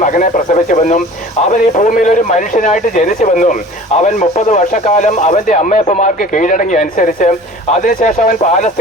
മകനെ പ്രസവിച്ചുവെന്നും അവൻ ഈ ഭൂമിയിൽ ഒരു മനുഷ്യനായിട്ട് ജനിച്ചുവെന്നും അവൻ 30 വർഷക്കാലം അവന്റെ അമ്മയപ്പന്മാർക്ക് കീഴടങ്ങി അനുസരിച്ച് അതിനുശേഷം അവൻ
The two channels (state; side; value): normal; both; correlation 0.43